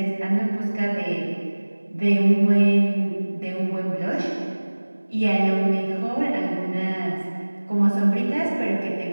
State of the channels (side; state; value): both; inverted; correlation -1.00